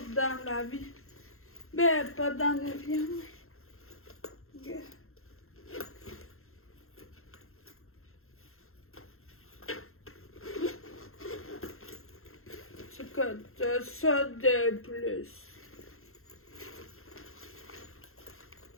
dans la vie. Ben, pas dans l'avion, mais... Tu coûtes ça de plus.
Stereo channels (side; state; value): right; late; 0.62 ms